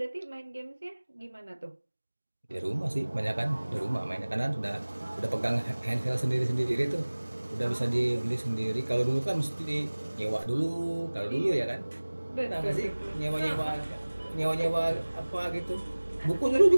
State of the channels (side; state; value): both; inverted; correlation -1.00